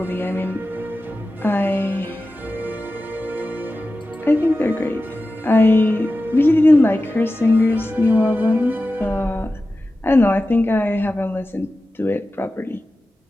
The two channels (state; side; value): normal; both; correlation 0.94